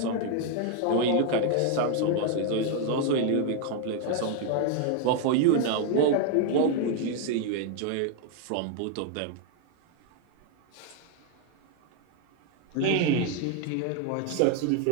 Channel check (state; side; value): different; both; correlation 0.00